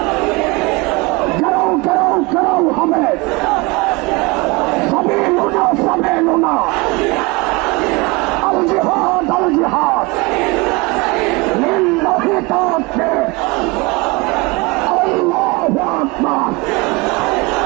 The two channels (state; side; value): quieter; left; 25.3 dB